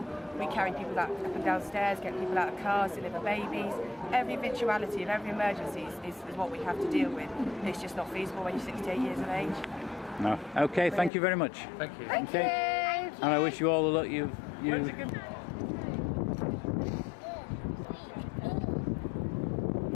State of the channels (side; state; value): right; drops out; at 11.1 s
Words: We carry people up and downstairs, get people out of cars, deliver babies. Every eventuality of every emergency is what we have to deal with. It's just not feasible when you're 68 years of age. No. Okay, thank you very much. Thank you. Thank you. And I wish you all the luck you.